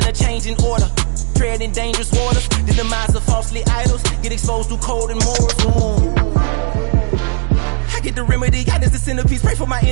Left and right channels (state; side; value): silent; left; digital silence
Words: a change in order. Treading dangerous waters. The demise of falsely idols. Get exposed through code and morals. Ooh. I get the remedy, God is the centerpiece. Pray for my